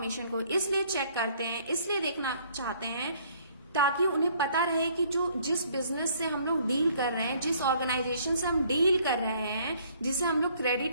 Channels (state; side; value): inverted; both; correlation -0.61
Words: को इसलिए चेक करते हैं, इसलिए देखना चाहते हैं ताकि उन्हें पता रहे कि जिस बिजनेस से हम लोग डील कर रहे हैं, जिस ऑर्गेनाइजेशन से हम डील कर रहे हैं, जिसे हम लोग